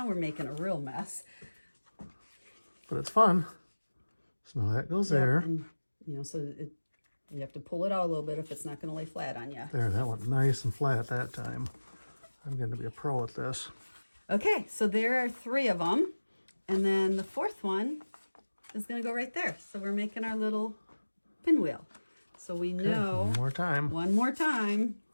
we're making a real mess. But it's fun. So now that goes there. And, you know, so you have to pull it out a little bit if it's not going to lay flat on you. There, that went nice and flat that time. I'm going to be a pro at this. Okay, so there are 3 of them. And then the 4th one is going to go right there. So we're making our little pinwheel. So we know... One more time. One more time.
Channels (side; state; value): both; inverted; correlation -1.00